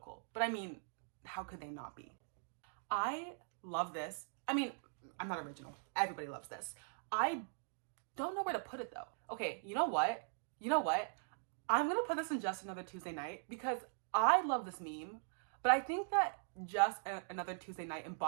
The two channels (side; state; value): left; silent; digital silence